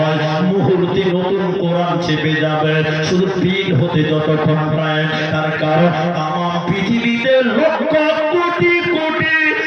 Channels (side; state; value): both; identical; correlation 1.00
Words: মুহূর্তে নতুন কোরআন চেপে যাবে, শুধু পিন হতে যতক্ষণ প্রায়। তার কারণ তামাম পৃথিবীতে লক্ষ কোটি কোটি